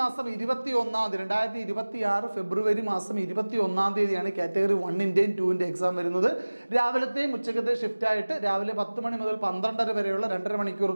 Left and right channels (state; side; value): inverted; both; correlation -1.00